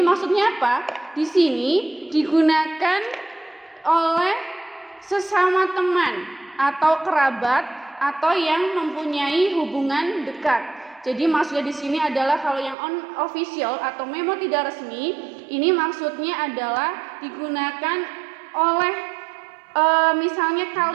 maksudnya apa? Di sini digunakan oleh sesama teman atau kerabat atau yang mempunyai hubungan dekat. Jadi maksudnya di sini adalah kalau yang unofficial atau memo tidak resmi, ini maksudnya adalah digunakan oleh misalnya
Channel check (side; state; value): left; drops out; at 12.8 s